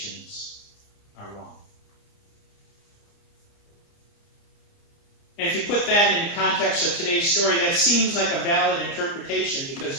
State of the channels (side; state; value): right; late; 29 ms